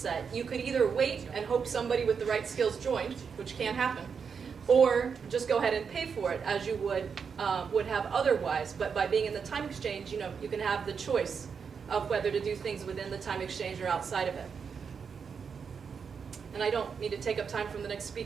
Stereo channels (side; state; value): left; quieter; 6.2 dB